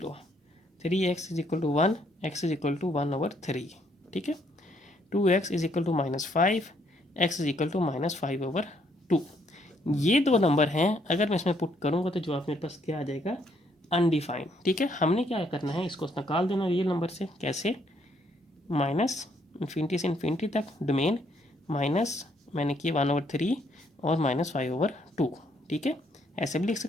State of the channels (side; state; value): both; normal; correlation 0.70